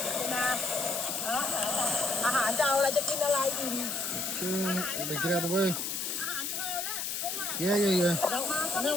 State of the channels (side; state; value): left; noise; hiss, 3 dB below the sound